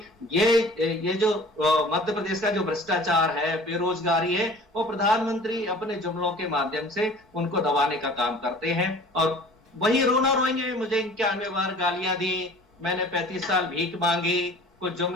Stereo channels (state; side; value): normal; both; correlation 0.45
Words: ये जो मध्य प्रदेश का जो भ्रष्टाचार है, बेरोजगारी है, वो प्रधानमंत्री अपने जुमलों के माध्यम से उनको दबाने का काम करते हैं। और वही रोना रोएंगे, मुझे 91 बार गालियां दी, मैंने 35 साल भीख मांगी, कुछ